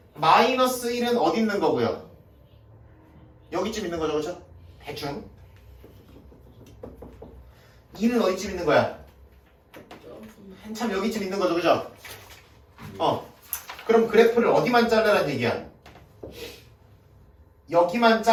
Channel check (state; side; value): identical; both; correlation 1.00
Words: 마이너스 1은 어디 있는 거고요? 여기쯤 있는 거죠, 그렇죠? 대충. 2는 어디쯤 있는 거야? 한참 여기쯤 있는 거죠, 그죠? 그럼 그래프를 어디만 잘라란 얘기야? 여기만